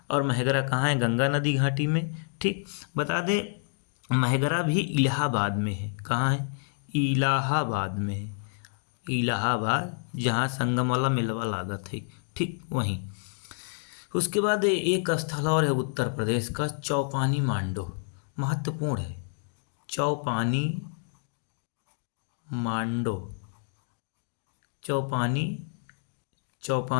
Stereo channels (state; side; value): silent; right; digital silence